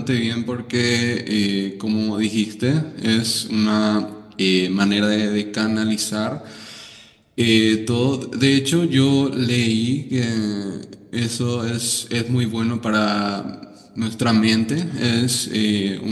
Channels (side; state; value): both; identical; correlation 1.00